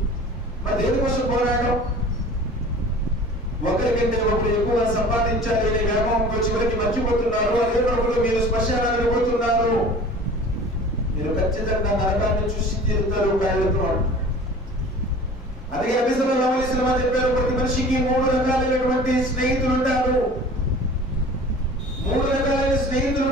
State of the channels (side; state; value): both; normal; correlation 0.42